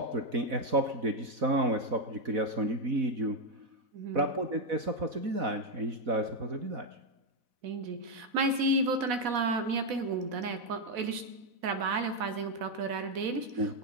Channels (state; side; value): late; left; 4.1 ms